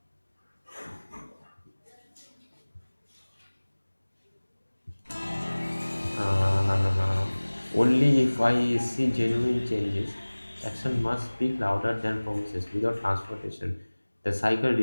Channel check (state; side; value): inverted; both; correlation -1.00